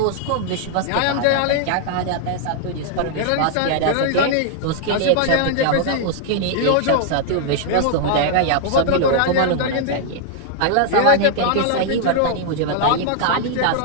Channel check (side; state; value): both; different; correlation 0.00